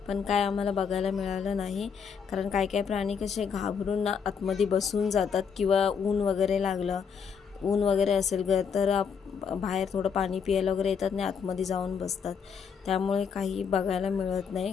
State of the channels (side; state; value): right; quieter; 6.6 dB